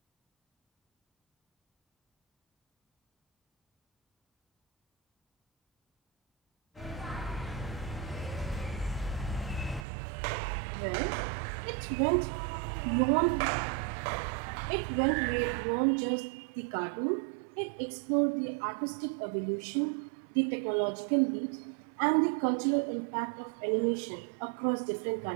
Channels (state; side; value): drops out; left; at 9.9 s